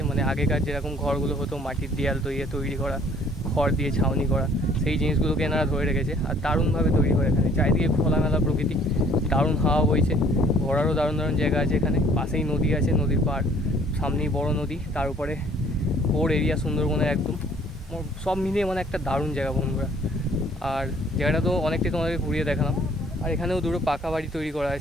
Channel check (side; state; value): both; normal; correlation 0.58